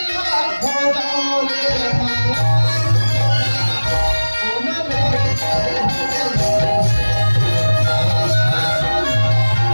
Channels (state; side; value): inverted; both; correlation -1.00